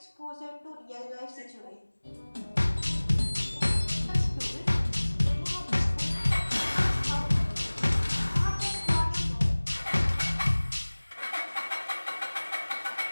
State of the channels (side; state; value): both; inverted; correlation -1.00